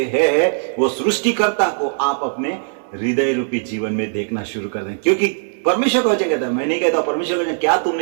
हैं, वो सृष्टिकर्ता को आप अपने हृदय रूपी जीवन में देखना शुरू कर दें। क्योंकि परमेश्वर का वचन कहता है, मैं नहीं कहता, परमेश्वर का वचन, क्या तुम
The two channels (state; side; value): silent; left; 66 dB below the other